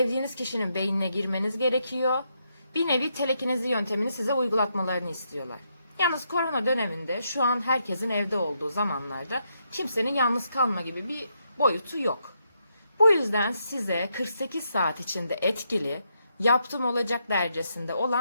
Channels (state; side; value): inverted; both; correlation -0.79